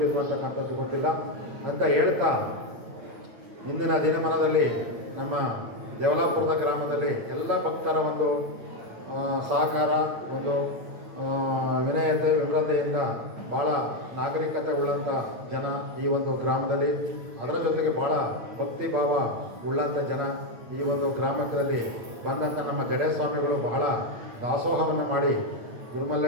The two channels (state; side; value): late; left; 8.7 ms